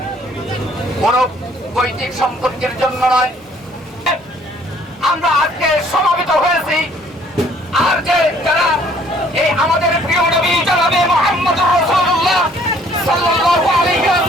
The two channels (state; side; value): normal; both; correlation 0.60